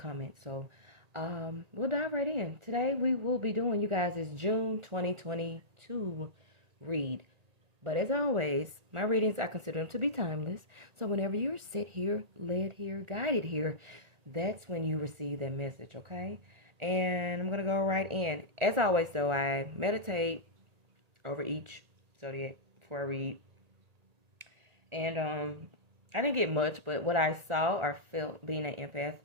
So we'll dive right in. Today we will be doing, you guys, is June 2022 read. But as always, my readings, I consider them to be timeless. So whenever you're set here, led here, guided here, that's when you receive that message, okay? And I'm going to go right in. As always, though, I meditate over each zodiac before I read. And I didn't get much, but what I saw or felt being an empath,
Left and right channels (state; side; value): late; left; 1.8 ms